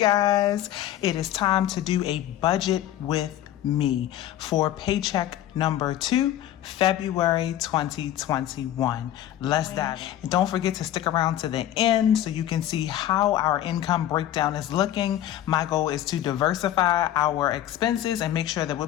It is time to do a budget with me for paycheck number 2, February 2021. Let's dive in. And don't forget to stick around to the end so you can see how our income breakdown is looking. My goal is to diversify our expenses and make sure that we're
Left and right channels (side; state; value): right; quieter; 12.4 dB